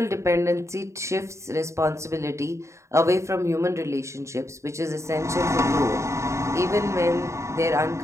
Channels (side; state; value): left; late; 0.14 ms